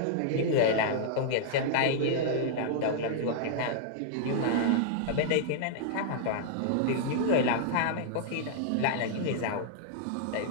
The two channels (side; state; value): both; different; correlation -0.01